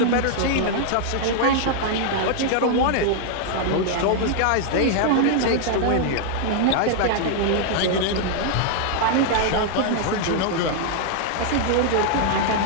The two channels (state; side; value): different; both; correlation 0.00